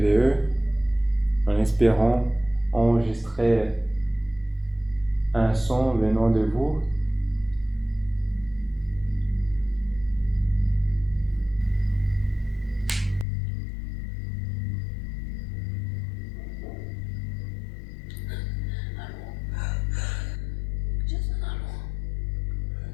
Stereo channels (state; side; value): drops out; right; at 13.2 s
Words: en espérant enregistrer un son venant de vous. Jason, allô?